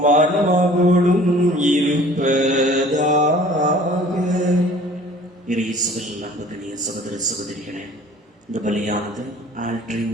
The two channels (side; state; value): both; normal; correlation 0.49